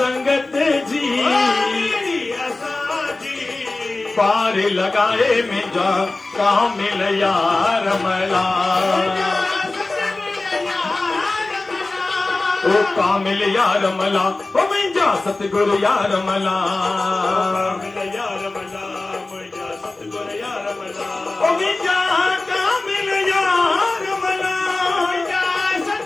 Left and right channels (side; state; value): right; quieter; 3.1 dB